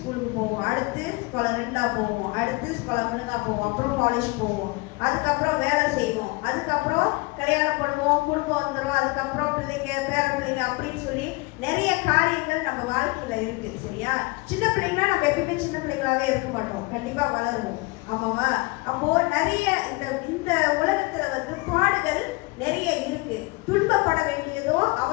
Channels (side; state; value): right; quieter; 25.4 dB